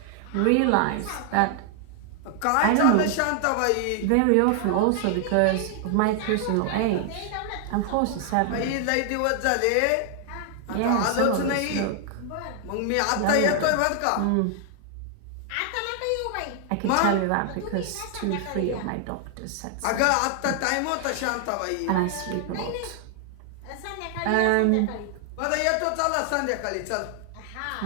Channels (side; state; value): both; different; correlation 0.00